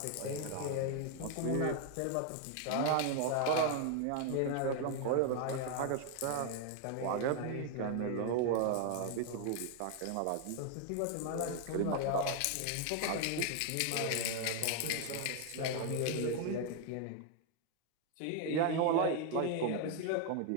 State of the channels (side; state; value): both; different; correlation 0.00